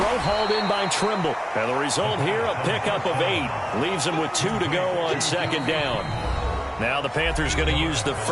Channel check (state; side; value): identical; both; correlation 1.00